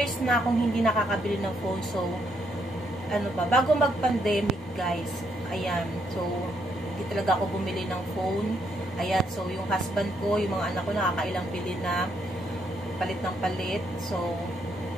na akong hindi nakakabili ng phone. So, ano ba, bago mag-pandemic guys. Ayan. So, hindi talaga ako bumili ng phone. Ayan, so yung husband ko, yung mga anak ko nakakailang bili na palit ng palit. So,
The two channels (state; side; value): normal; both; correlation 0.74